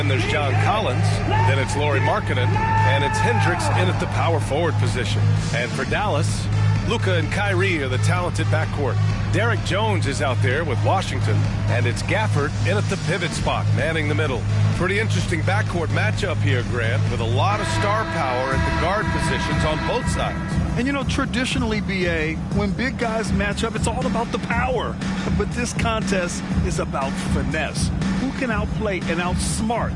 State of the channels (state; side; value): identical; both; correlation 1.00